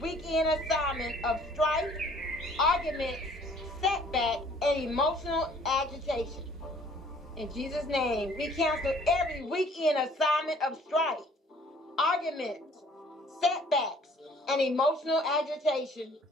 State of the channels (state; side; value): normal; both; correlation 0.56